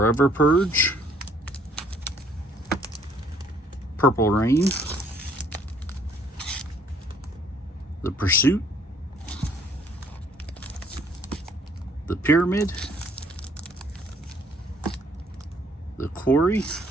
Purge. Purple Rain. The Pursuit, The Pyramid, The Quarry,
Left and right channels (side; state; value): both; normal; correlation 0.62